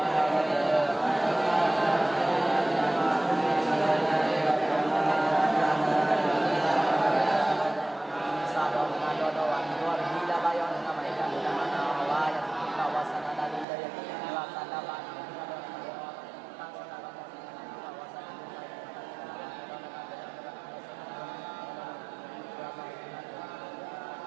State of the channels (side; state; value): left; drops out; at 13.7 s